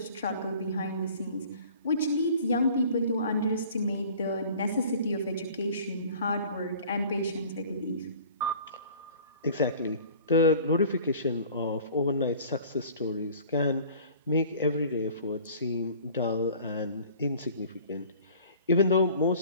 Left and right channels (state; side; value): inverted; both; correlation -0.47